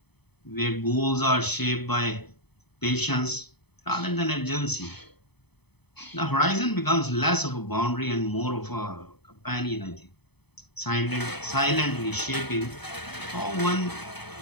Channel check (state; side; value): late; right; 0.98 ms